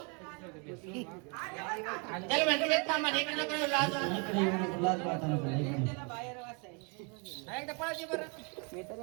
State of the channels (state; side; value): quieter; left; 34.8 dB